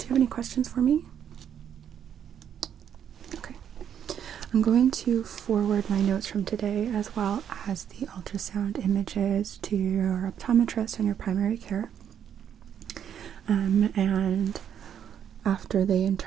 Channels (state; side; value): quieter; left; 9.0 dB